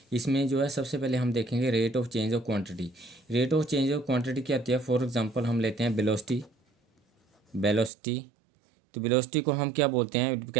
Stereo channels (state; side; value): drops out; left; at 7.9 s